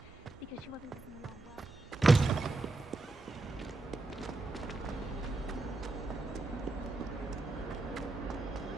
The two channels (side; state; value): left; quieter; 3.1 dB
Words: because she wasn't getting along well.